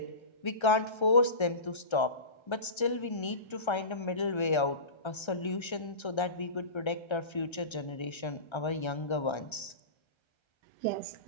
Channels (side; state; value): right; late; 1.3 ms